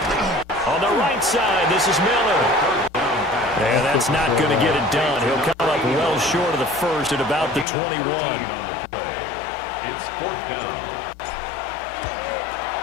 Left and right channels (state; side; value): drops out; right; at 7.7 s